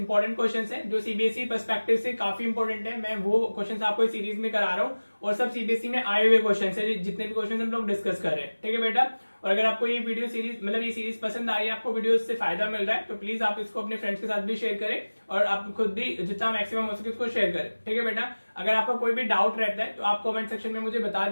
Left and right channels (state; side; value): inverted; both; correlation -1.00